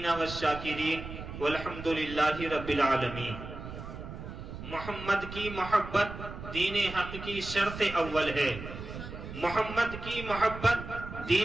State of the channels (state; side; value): noise; right; rumble, 10 dB below the sound